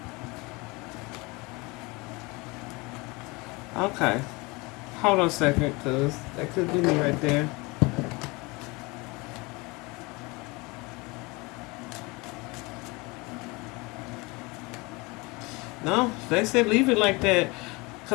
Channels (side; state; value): right; quieter; 25.3 dB